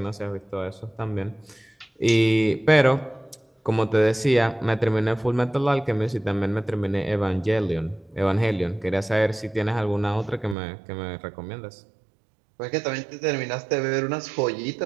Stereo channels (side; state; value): left; drops out; at 10.6 s